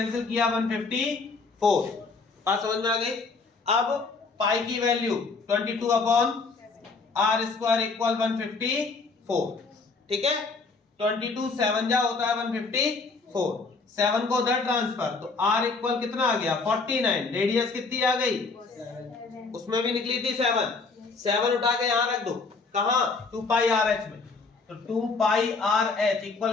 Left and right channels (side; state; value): right; quieter; 4.2 dB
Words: किया 154। बात समझ में आ गई। अब पाई की वैल्यू 22/R² इक्वल 154, ठीक है, 22 7 जा होता है 154, 7 को उधर ट्रांसफर तो R इक्वल कितना आ गया 49, रेडियस कितनी आ गई उसमें भी निकली थी 7 उठा के यहां रख दो, कहां 2πRH में, तो 2πRH